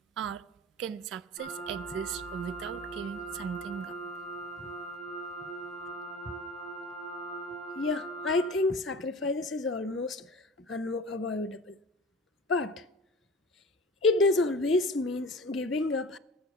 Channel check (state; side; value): normal; both; correlation 0.38